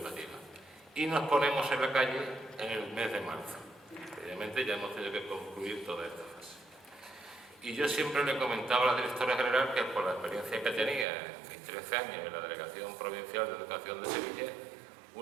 Y nos ponemos en la calle en el mes de marzo. Obviamente ya hemos tenido que concluir toda esta fase. Y yo siempre le comentaba a la directora general que por la experiencia que tenía en mis 13 años en la Delegación Provincial de Educación de Sevilla,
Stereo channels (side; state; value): left; drops out; at 11.1 s